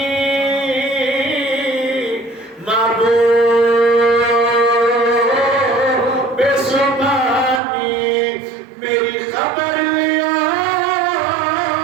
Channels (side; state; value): left; drops out; at 7.6 s